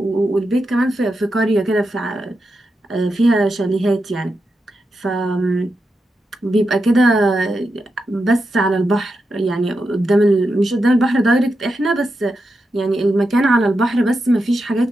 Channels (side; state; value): both; normal; correlation 0.87